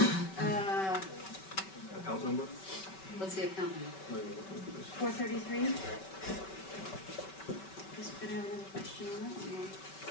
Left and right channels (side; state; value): right; late; 5.2 ms